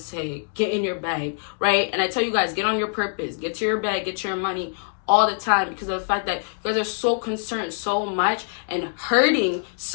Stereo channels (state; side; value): silent; right; 62 dB below the other